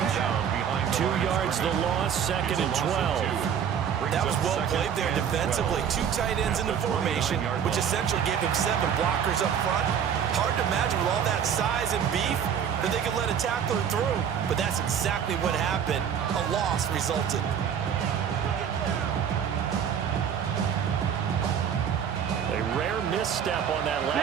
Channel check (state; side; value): quieter; left; 8.2 dB